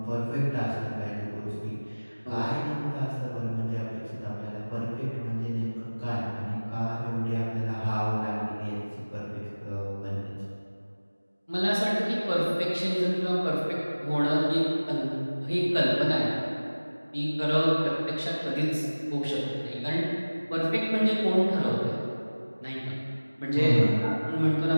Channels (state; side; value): inverted; both; correlation -1.00